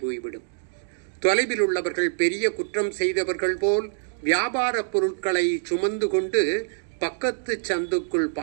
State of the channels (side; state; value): left; silent; digital silence